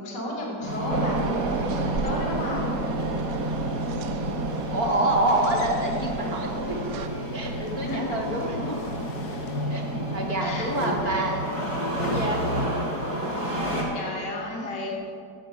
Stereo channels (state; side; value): late; right; 4.7 ms